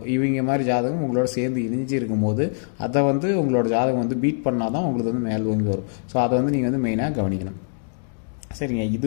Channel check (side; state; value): right; silent; digital silence